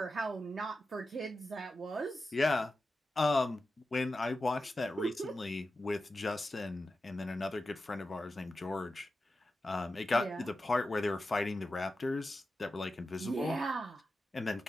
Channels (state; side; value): normal; both; correlation 0.91